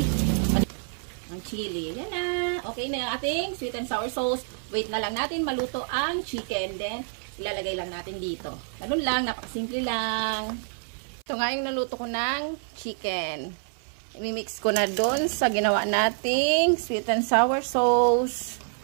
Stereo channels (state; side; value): silent; left; 60 dB below the other